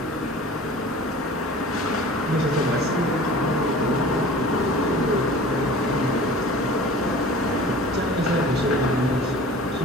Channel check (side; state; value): both; normal; correlation 0.42